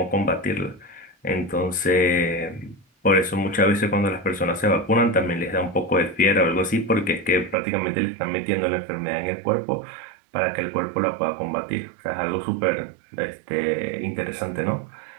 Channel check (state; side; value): drops out; left; at 7.6 s